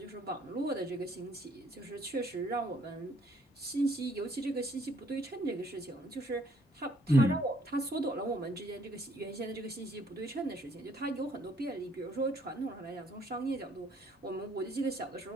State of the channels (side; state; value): both; normal; correlation 0.64